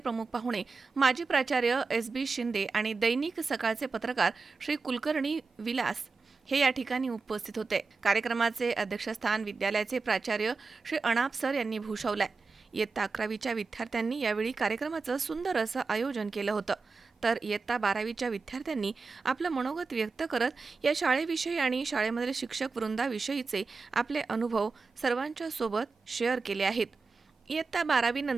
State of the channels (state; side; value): quieter; left; 4.4 dB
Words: पाहुणे माजी प्राचार्य SB शिंदे आणि दैनिक सकाळचे पत्रकार श्री कुलकर्णी विलास हे या ठिकाणी उपस्थित होते। कार्यक्रमाचे अध्यक्षस्थान विद्यालयाचे प्राचार्य श्री अनाप सर यांनी भूषवले। इयत्ता 11वीच्या विद्यार्थ्यांनी यावेळी कार्यक्रमाचं सुंदर असं आयोजन केलं होतं, तर इयत्ता 12वीच्या विद्यार्थ्यांनी आपलं मनोगत व्यक्त करत या शाळेविषयी आणि शाळेमधील शिक्षक वृंदाविषयीचे आपले अनुभव सर्वांच्या सोबत शेअर केले आहेत। इयत्ता 12वी